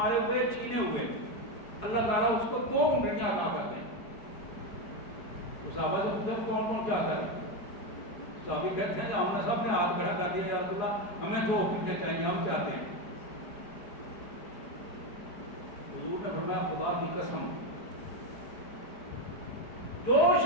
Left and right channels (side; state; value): right; late; 4.8 ms